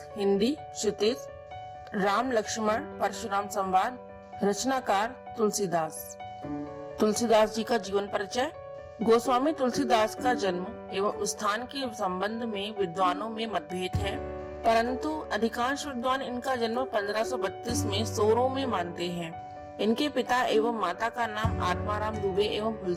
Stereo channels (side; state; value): both; identical; correlation 1.00